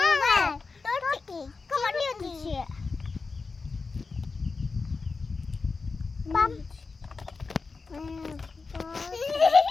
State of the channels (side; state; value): right; quieter; 4.3 dB